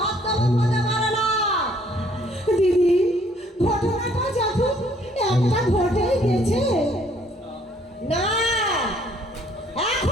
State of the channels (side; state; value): both; normal; correlation 0.63